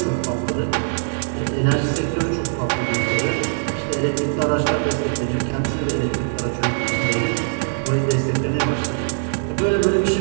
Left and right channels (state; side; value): silent; left; 65 dB below the other